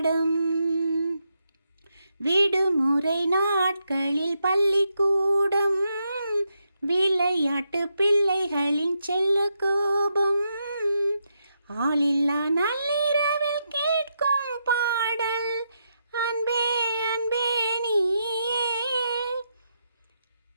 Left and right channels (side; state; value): both; inverted; correlation -0.82